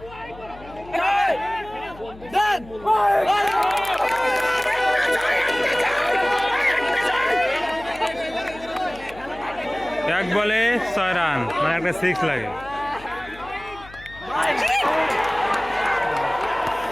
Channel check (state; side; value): noise; left; hum, 20 dB below the sound